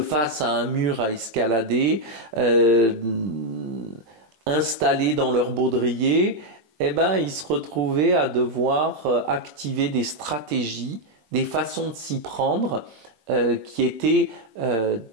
à un mur à escalader, installés dans leur baudrier, eh ben, ils se retrouvaient à devoir activer des stratégies, des façons de s'y prendre qui étaient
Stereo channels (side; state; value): left; late; 20 ms